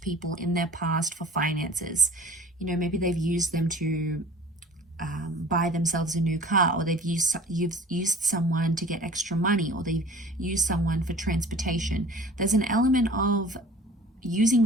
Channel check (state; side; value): normal; both; correlation 0.46